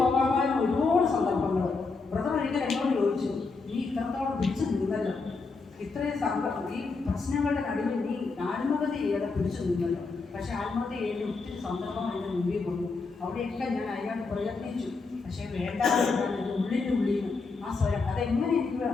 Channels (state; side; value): quieter; right; 4.2 dB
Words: ഒരുപാട് സന്ദർഭങ്ങൾ ബ്രദർ ഒരിക്കൽ എന്നോട് ചോദിച്ചു, നീ ഇത്രത്തോളം പിടിച്ചു നിന്നല്ലോ, ഇത്രയും ഈ പ്രശ്നങ്ങളുടെ നടുവിൽ നീ ആത്മഹത്യ ചെയ്യാതെ പിടിച്ചു നിന്നല്ലോ. പക്ഷെ ആത്മഹത്യ ചെയ്യേണ്ട ഒത്തിരി സന്ദർഭം എൻ്റെ മുമ്പിൽ കൊണ്ടു. അവിടെയൊക്കെ ഞാൻ അതിനകത്ത് പ്രയത്നിച്ചു. പക്ഷേ വേണ്ട ഉള്ളിൻ്റെ ഉള്ളിൽ ആ സ്വരം അതെങ്ങനെ എനിക്ക്